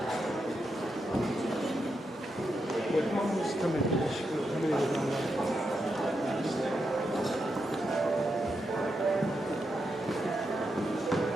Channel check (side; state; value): both; normal; correlation 0.84